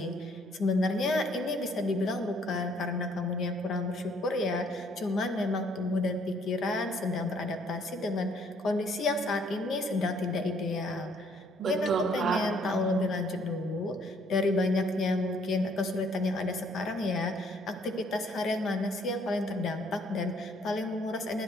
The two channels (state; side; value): normal; both; correlation 0.64